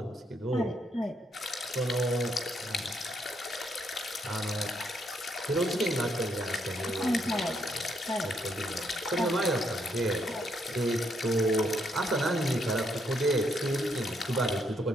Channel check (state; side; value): normal; both; correlation 0.74